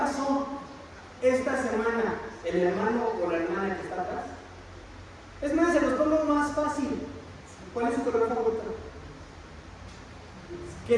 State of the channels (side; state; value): both; identical; correlation 1.00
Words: esta semana el hermano o la hermana que está atrás? Es más, se los pongo más fácil. ¿Cuál es su color favorito? Que